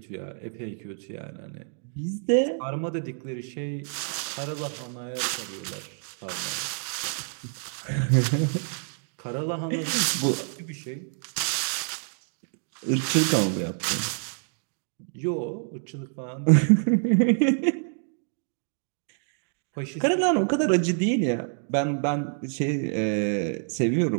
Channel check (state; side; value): silent; left; 60 dB below the other